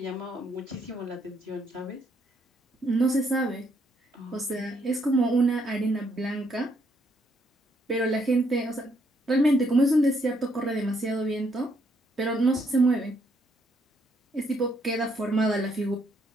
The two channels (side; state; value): both; normal; correlation 0.73